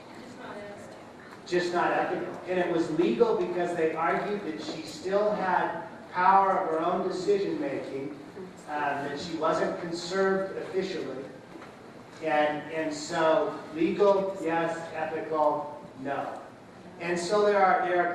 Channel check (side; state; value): both; identical; correlation 1.00